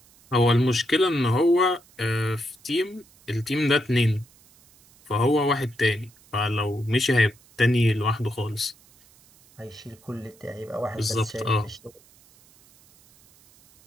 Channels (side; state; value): right; noise; hiss, 28 dB below the sound